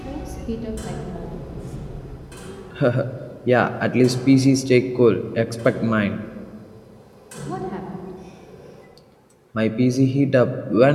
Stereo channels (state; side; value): identical; both; correlation 1.00